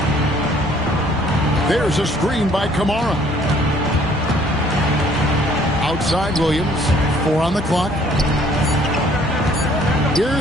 There's a screen by Kamara. Outside Williams. 4 on the clock.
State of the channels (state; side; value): normal; both; correlation 0.59